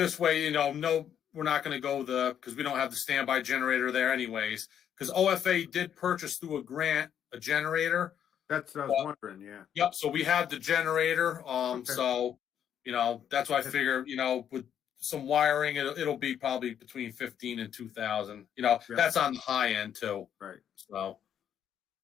way, no, we're not going to go because we don't have the standby generator there anyways. Because OFA did purchase through a grant a generator. That's what I was wondering. Yeah. Yep. So we have the generator. Okay. So that's why I figure with some wiring, it'll be probably between 15 and 2,000. That's on the high end too. Right. So.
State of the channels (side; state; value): right; quieter; 9.2 dB